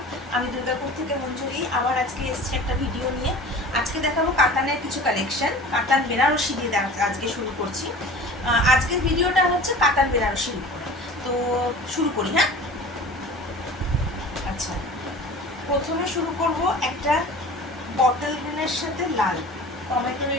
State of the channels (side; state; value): both; normal; correlation 0.40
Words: আমি দুর্গাপুর থেকে মঞ্জুরি আবার আজকে এসেছি একটা ভিডিও নিয়ে। আজকে দেখাবো কাতানের কিছু কালেকশন। কাতান বেনারসি দিয়ে আজকে শুরু করছি। আজকের ভিডিওটা হচ্ছে কাতান বেনারসির উপরে। তো শুরু করি, হ্যাঁ। আচ্ছা, প্রথমে শুরু করব একটা বটল গ্রিনের সাথে লাল, টমেটো